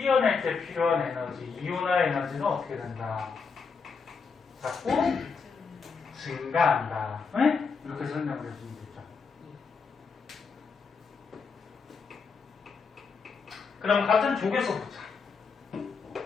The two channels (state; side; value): quieter; right; 5.2 dB